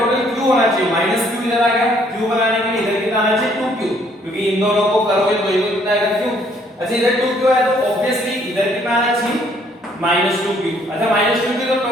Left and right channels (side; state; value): both; normal; correlation 0.64